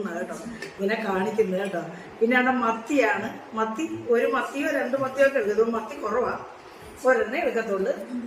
കേട്ടോ, ഇങ്ങനെ കാണിക്കുന്നത് കേട്ടോ. പിന്നെ അവിടെ മത്തിയാണ്. മത്തി 1 മത്തിയോ 2 മത്തിയോ ഒക്കെ എടുക്കും. മത്തി കുറവാണ്, ഒരെണ്ണേ എടുക്കത്തുള്ളൂ.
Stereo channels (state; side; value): identical; both; correlation 1.00